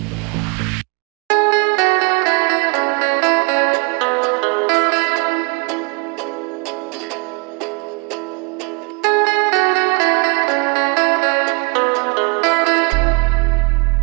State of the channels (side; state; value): left; quieter; 33.8 dB